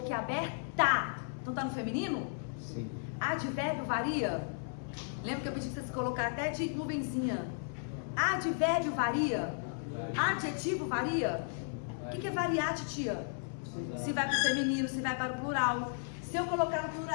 Então tá no feminino? Sim. Advérbio varia? Lembra que eu pedi que vocês colocaram até de nuvenzinha? Advérbio varia? Adjetivo varia? O que é variar, titia? Se vai para o feminino, se vai para o plural. Se eu colocar no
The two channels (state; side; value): silent; right; 55 dB below the other